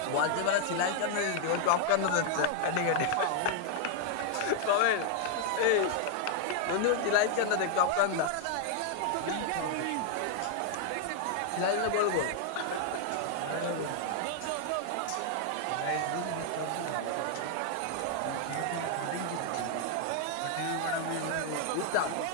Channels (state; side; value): different; both; correlation 0.00